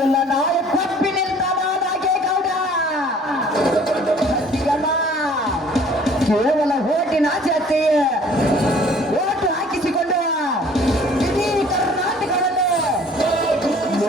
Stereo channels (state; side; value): normal; both; correlation 0.53